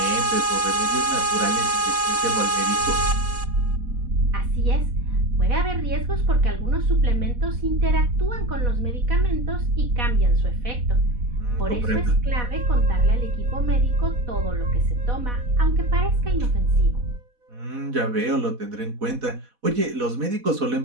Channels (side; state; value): left; late; 4.1 ms